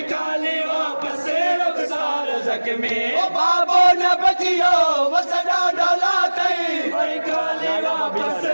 काली वापस रुखसार ज़ख्मी ओ बाबो न बचियो वसदा डाला तई वही काली वापस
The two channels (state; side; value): inverted; both; correlation -1.00